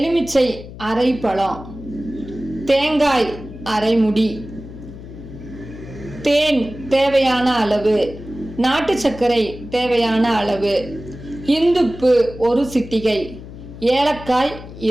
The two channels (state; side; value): noise; left; hum, 14 dB below the sound